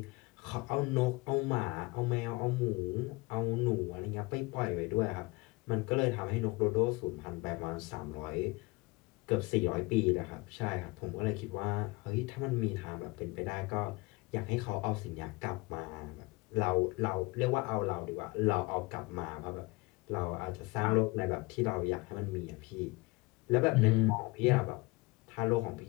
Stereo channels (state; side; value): quieter; right; 24.0 dB